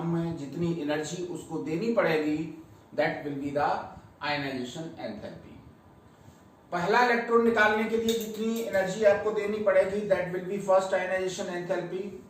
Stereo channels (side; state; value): both; identical; correlation 1.00